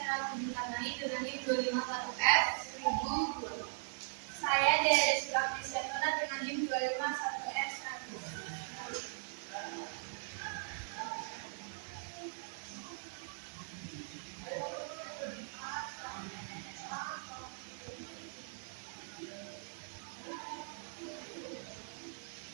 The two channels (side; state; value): left; silent; digital silence